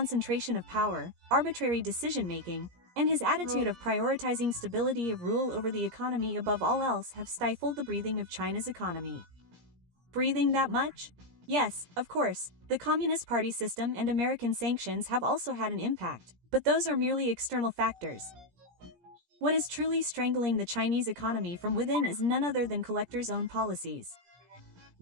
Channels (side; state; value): left; late; 17 ms